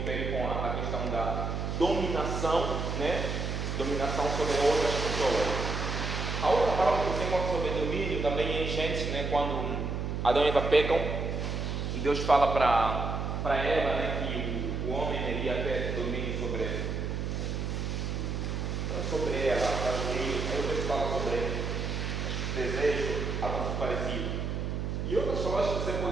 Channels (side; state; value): right; noise; hum, 2 dB below the sound